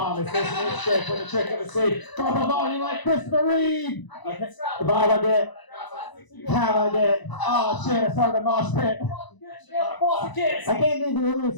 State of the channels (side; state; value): right; late; 1.0 ms